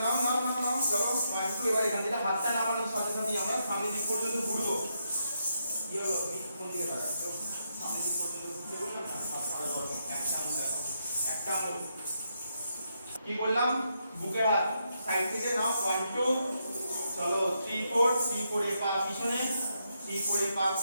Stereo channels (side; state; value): both; inverted; correlation -0.81